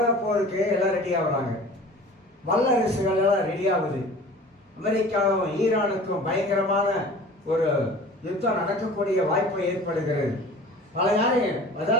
போருக்கு எல்லாம் ரெடி ஆகுறாங்க. வல்லரசுகள் எல்லாம் ரெடி ஆகுது. அமெரிக்காவும் ஈரானுக்கும் பயங்கரமான ஒரு யுத்தம் நடக்கக்கூடிய வாய்ப்பு ஏற்படுகிறது. பல யாரையும்,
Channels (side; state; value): both; normal; correlation 0.43